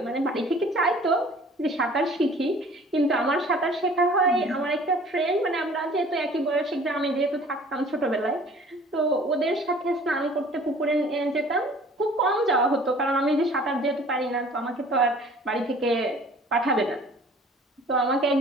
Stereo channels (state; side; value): normal; both; correlation 0.50